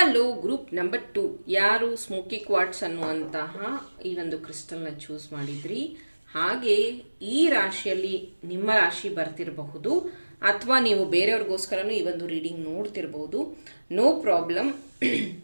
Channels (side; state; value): both; inverted; correlation -1.00